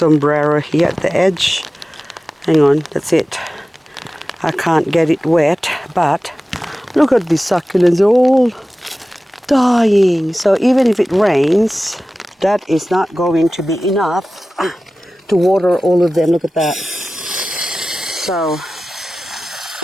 here at the edge. Hang on, that's it. I can't get it wet, but look at these succulents, they're all dying. So even if it rains, that is not going to be enough to water all of them. Look at that. So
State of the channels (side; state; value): both; normal; correlation 0.96